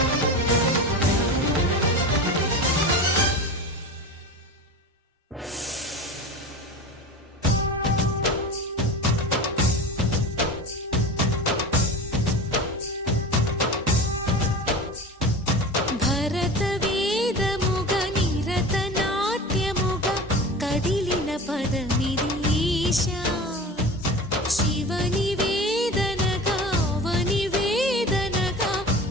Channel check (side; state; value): both; normal; correlation 0.32